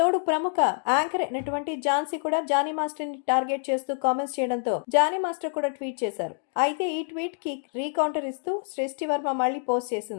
ప్రముఖ యాంకర్ అయినటువంటి ఝాన్సీ కూడా జానీ మాస్టర్ ని టార్గెట్ చేస్తూ కామెంట్స్ చేయడంతో జానీ మాస్టర్ కూడా ట్వీట్ చేశారు. అయితే ఈ ట్వీట్ కి రీకౌంటర్ ఇస్తూ సృష్టి వర్మ మళ్ళీ పోస్ట్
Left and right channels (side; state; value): right; silent; digital silence